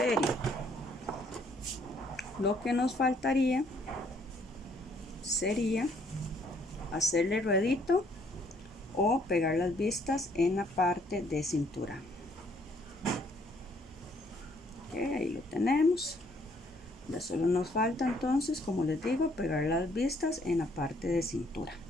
Lo que nos faltaría sería hacerle ruedito o pegar las vistas en la parte de cintura. Okay, ahí lo tenemos. Ya solo nos falta entonces, como les digo, pegar las vistas en la parte de cintura,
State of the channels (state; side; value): normal; both; correlation 0.66